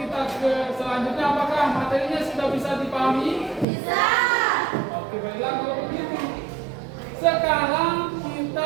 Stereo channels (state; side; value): drops out; left; at 3.7 s